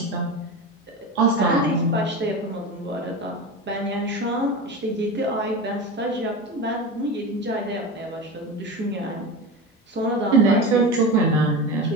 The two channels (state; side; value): normal; both; correlation 0.26